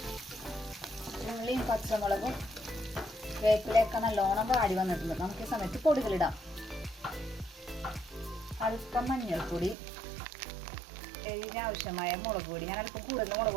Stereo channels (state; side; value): drops out; left; at 9.8 s